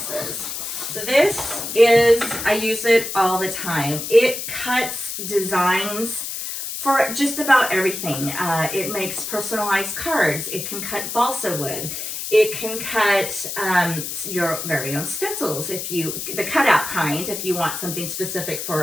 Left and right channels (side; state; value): left; noise; hiss, 5 dB below the sound